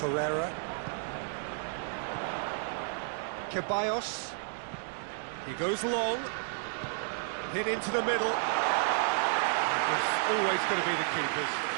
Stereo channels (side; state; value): left; silent; digital silence